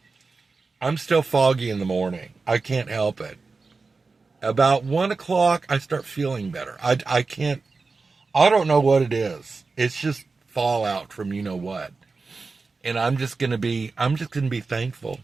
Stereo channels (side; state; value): left; quieter; 4.1 dB